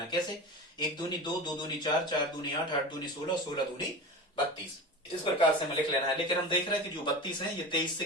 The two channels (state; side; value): normal; both; correlation 0.30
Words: कैसे? एक दूनी दो, दो दूनी चार, चार दूनी आठ, आठ दूनी 16, 16 दूनी 32। इस प्रकार से हमें लिख लेना है। लेकिन हम देख रहे हैं कि जो 32 है ये 23 से